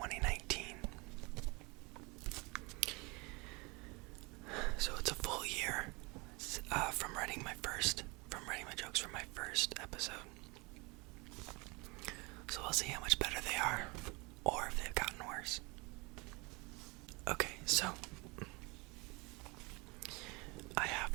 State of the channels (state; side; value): quieter; left; 27.0 dB